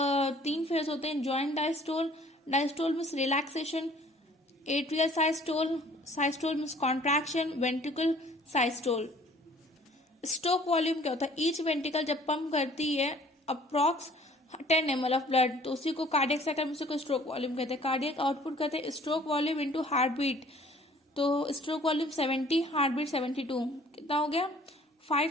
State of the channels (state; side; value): normal; both; correlation 0.54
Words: phase होते हैं. Joint diastole, diastole means relaxation, atrial systole, systole means contraction, ventricle systole. Stroke volume क्या होता है? ईच वेंट्रिकल जब पंप करती है अप्रॉक्स 10 ml ऑफ ब्लड, तो उसी को कार्डियक साइकिल में उसी को स्ट्रोक वॉल्यूम कहते हैं. कार्डियक आउटपुट कहते हैं stroke volume into heart beat. तो स्ट्रोक वॉल्यूम 70, हार्ट बीट 72, कितना हो गया?